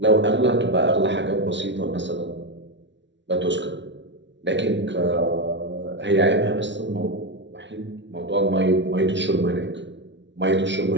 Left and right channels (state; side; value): late; left; 0.53 ms